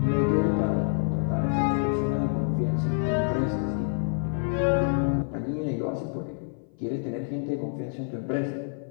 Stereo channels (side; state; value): right; silent; 56 dB below the other